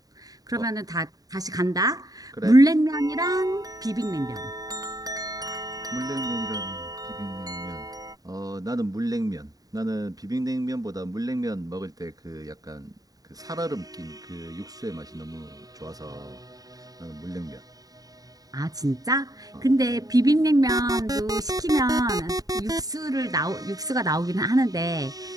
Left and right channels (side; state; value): left; late; 0.18 ms